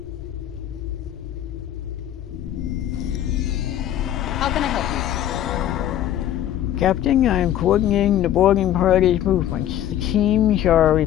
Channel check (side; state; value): right; quieter; 11.6 dB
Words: How can I help you? Captain, I am coordinating the boarding party's movements. The teams are